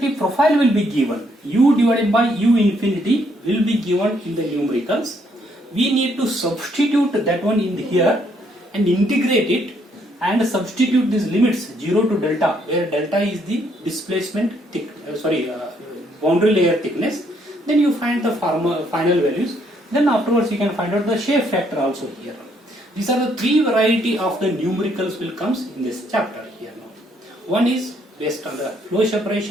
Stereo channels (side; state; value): both; normal; correlation 0.70